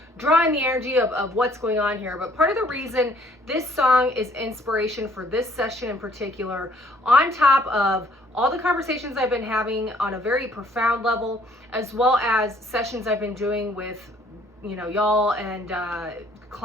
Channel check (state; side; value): normal; both; correlation 0.62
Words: draw in the energy of what's going on here. But part of the reason this song is inspiration for this session in particular, on top of all the conversations I've been having on a very profound level, as well as sessions I've been doing with, y'all and